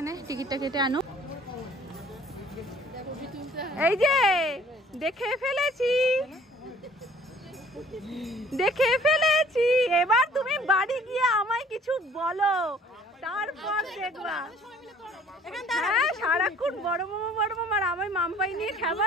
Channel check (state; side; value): normal; both; correlation 0.54